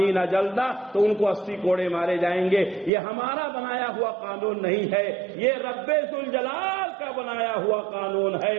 جلدہ، تو ان کو 80 کوڑے مارے جائیں گے۔ یہ ہمارا بنایا ہوا قانون نہیں ہے، یہ رب ذوالجلال کا بنایا ہوا قانون ہے۔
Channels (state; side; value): drops out; left; at 2.9 s